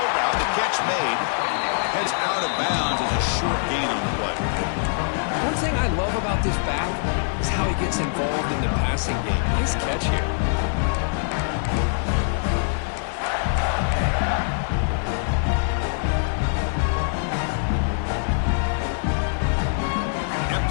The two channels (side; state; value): right; silent; digital silence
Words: route. The catch made. Heads out of bounds as a short gain on the play. One thing I love about this back is how he gets involved in the passing game. Nice catch here.